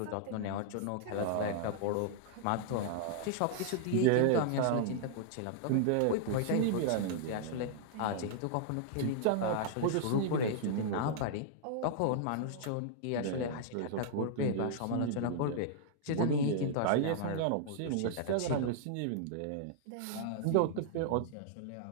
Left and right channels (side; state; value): both; different; correlation -0.01